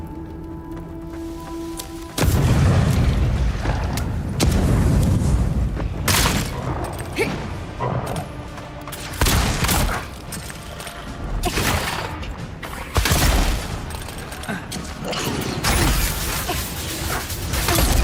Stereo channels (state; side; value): identical; both; correlation 1.00